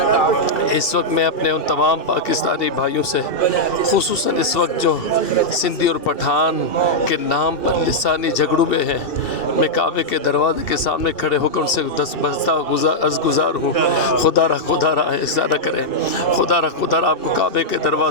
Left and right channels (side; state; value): right; late; 2.7 ms